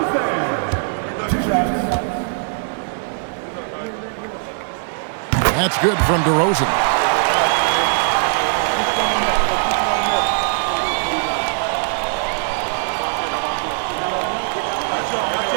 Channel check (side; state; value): left; silent; digital silence